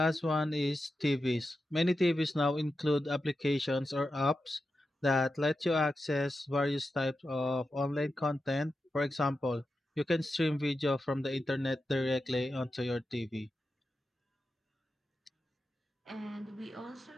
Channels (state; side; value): normal; both; correlation 0.90